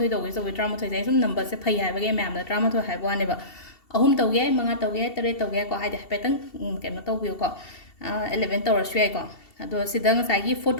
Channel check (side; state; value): right; late; 2.7 ms